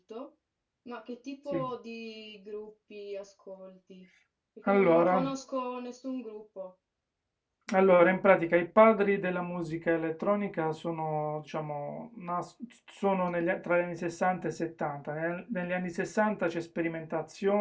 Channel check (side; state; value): both; identical; correlation 1.00